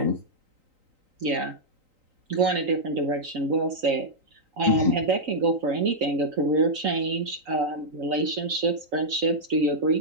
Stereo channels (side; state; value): left; late; 3.9 ms